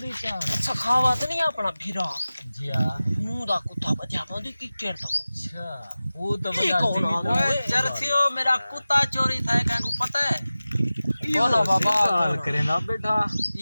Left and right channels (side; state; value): both; inverted; correlation -0.96